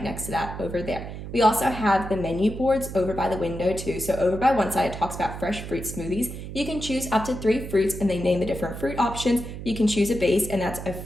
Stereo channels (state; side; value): noise; right; hum, 9 dB below the sound